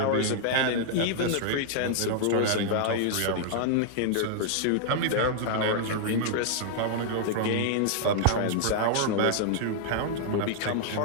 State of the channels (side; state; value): both; different; correlation -0.01